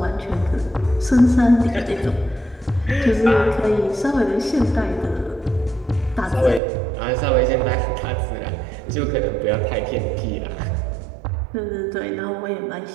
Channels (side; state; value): left; drops out; at 6.6 s